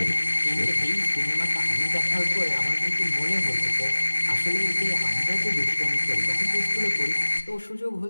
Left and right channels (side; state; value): both; inverted; correlation -1.00